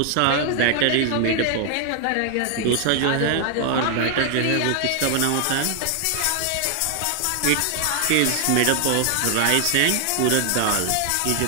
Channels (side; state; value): both; different; correlation 0.00